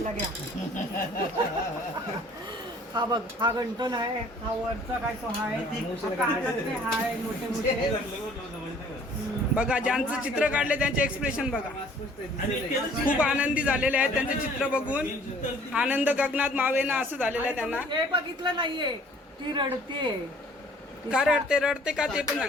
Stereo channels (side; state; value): both; normal; correlation 0.55